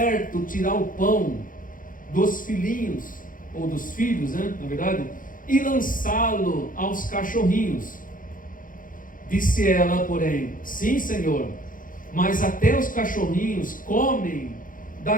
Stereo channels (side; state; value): right; late; 0.39 ms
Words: tirar o pão dos filhinhos, ou dos filhos, né, na verdade, e lançá-lo aos cachorrinhos. Disse ela, porém: sim, Senhor, mas até os cachorrinhos comem